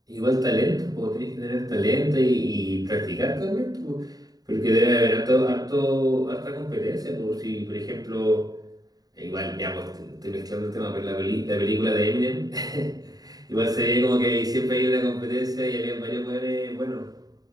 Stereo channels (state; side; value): late; left; 0.18 ms